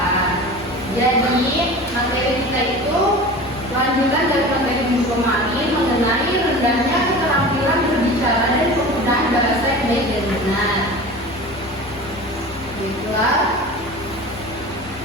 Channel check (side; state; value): both; normal; correlation 0.35